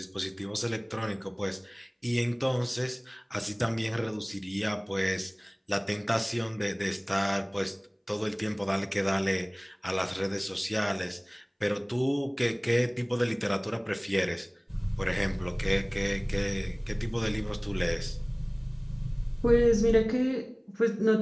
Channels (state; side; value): identical; both; correlation 1.00